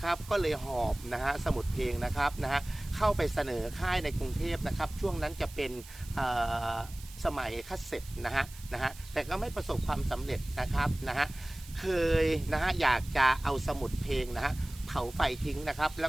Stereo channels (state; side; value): noise; right; hiss, 19 dB below the sound